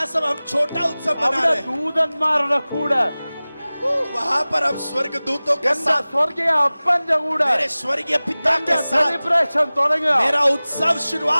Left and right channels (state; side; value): inverted; both; correlation -0.99